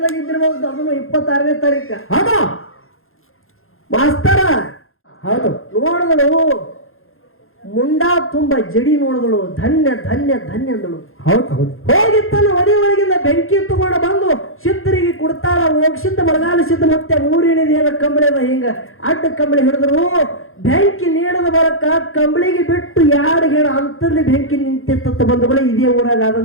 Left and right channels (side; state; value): right; late; 0.60 ms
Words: ಇದ್ದಿರಬಹುದು. ಅದನ್ನು 26ನೇ ತಾರೀಕ. ಹೌದಾ ಮಾಸ್ತರ? ಹೌದು. ನೋಡಿದಳು ಮುಂಡಾ ತುಂಬ ಜಡಿ ನೋಡಿದಳು. ಧನ್ಯ ಧನ್ಯ ಧನ್ಯ ಅಂದಳು. ಹೌದು ಹೌದು. ಹೋಗಿ ತನ್ನ ಒಡಿ ಒಳಗಿಂದ ಬೆಂಕಿ ತಗೊಂಡು ಬಂದು ಸಿದ್ಧರಿಗೆ ಕೊಡ್ತಾಳ. ಹೋಗ್ಸಿದ್ದ ಬರಗಾಲ ಸಿದ್ಧ ಮತ್ತೆ 3 ಏನಿದೆಯಲ್ಲ ಕಂಬಳಿ ಅದ ಹಿಂಗ ಅಡ್ಡ ಕಂಬಳಿ ಹಿಡಿದ್ರು. ಬೆಂಕಿ ನೀಡದ ಬರಕ ಕಂಬಳಿಗೆ ಬಿಟ್ಟು 2 ಹೇಳ ಅಂತಲ್ಲಿ ಬೆಂಕಿ ನಿಂತಿತ್ತ ಬಂಧುಗಳೇ. ಇದೇ ಊರಾಗ